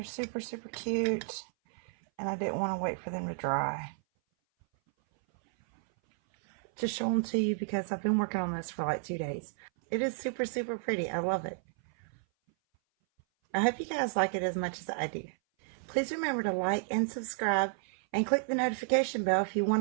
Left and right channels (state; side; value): silent; left; 56 dB below the other